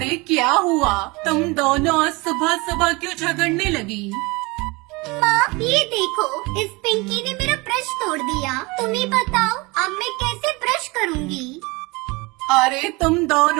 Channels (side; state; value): left; quieter; 25.3 dB